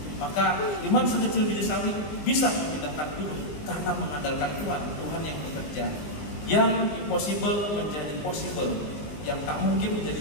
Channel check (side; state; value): right; late; 20 ms